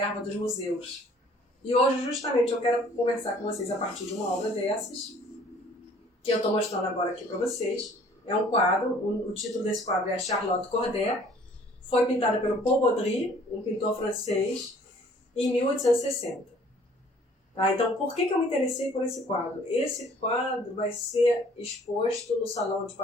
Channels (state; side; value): normal; both; correlation 0.56